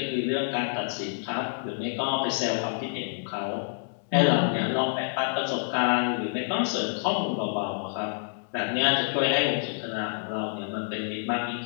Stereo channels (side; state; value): right; silent; digital silence